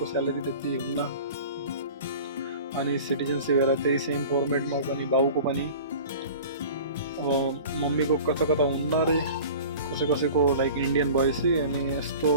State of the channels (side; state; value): both; inverted; correlation -0.40